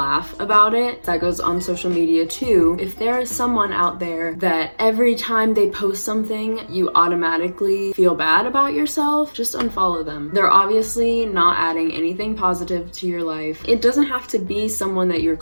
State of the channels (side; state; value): both; inverted; correlation -1.00